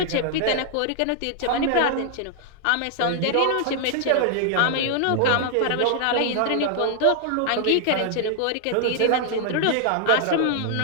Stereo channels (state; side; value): different; both; correlation 0.00